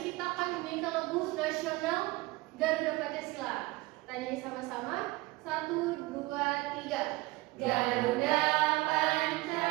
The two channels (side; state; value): left; quieter; 20.9 dB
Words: kita akan menyanyikan lagu nasional Garuda Pancasila. Kita nyanyi sama-sama. 1, 2, 3. Garuda